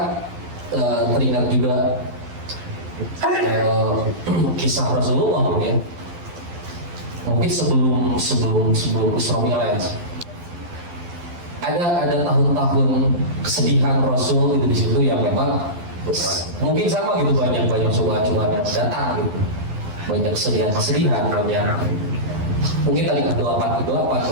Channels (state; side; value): late; left; 12 ms